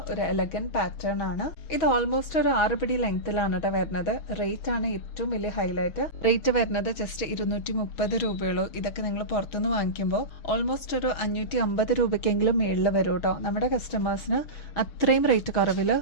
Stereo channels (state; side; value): late; right; 6.2 ms